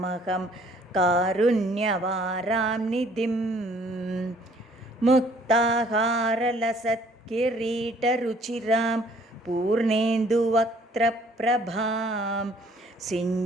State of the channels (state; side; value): normal; both; correlation 0.59